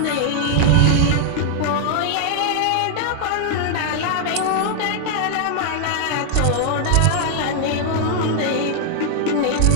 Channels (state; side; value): different; both; correlation 0.00